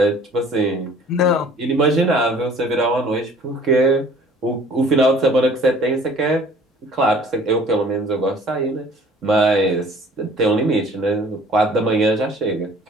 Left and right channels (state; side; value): normal; both; correlation 0.51